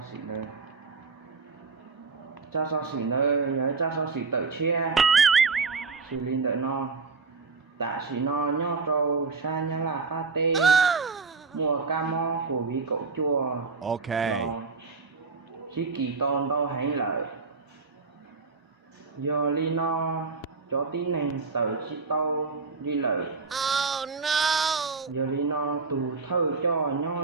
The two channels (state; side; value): quieter; left; 4.5 dB